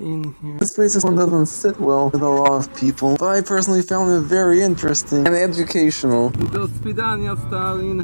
here. This place doesn't sit well with a lot of people, but I personally found it very interesting and educational. Do swidania, Stalin.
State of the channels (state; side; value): inverted; both; correlation -1.00